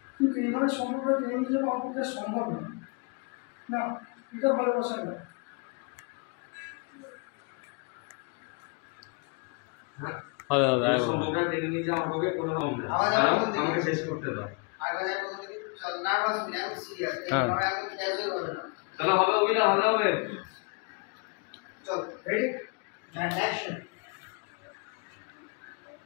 কিন্তু এইভাবে সম্পর্কটা টেনে নিয়ে যাবো আমার পক্ষে আর সম্ভব নয়। না, এটা ভালোবাসা নয়। সম্পর্কটা টেনে নিয়ে যাওয়া আমাকে কোনো আমাকে শেষ করতে দাও। চলো হবে অভিনয় ভালো হবে। চল রেডি অ্যান্ড অ্যাকশন।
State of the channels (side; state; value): right; quieter; 33.4 dB